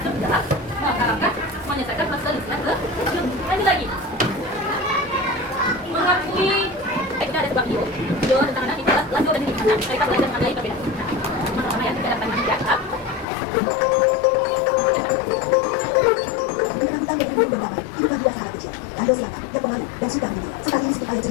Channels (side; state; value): right; drops out; at 13.2 s